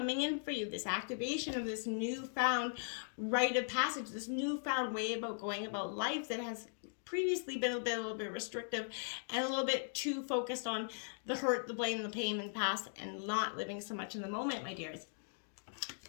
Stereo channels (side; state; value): right; silent; digital silence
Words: in for you. This activation of this newfound rite of passage, this newfound way about going about life that has previously been a little bit restrictive and a little bit too focused on the hurt, the blame, the pain in the past, and not living so much in the moment, my dears.